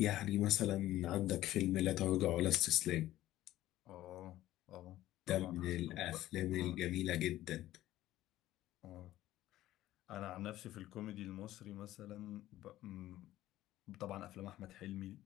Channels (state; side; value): quieter; right; 14.7 dB